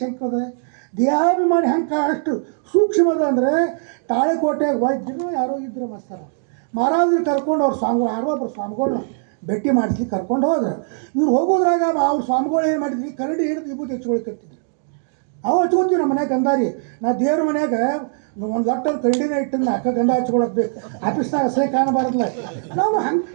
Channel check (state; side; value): silent; left; digital silence